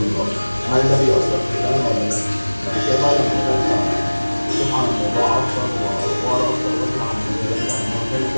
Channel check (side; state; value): both; inverted; correlation -1.00